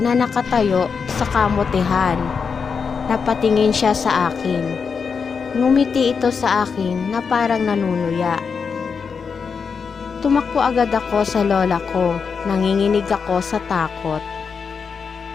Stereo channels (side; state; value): right; quieter; 5.8 dB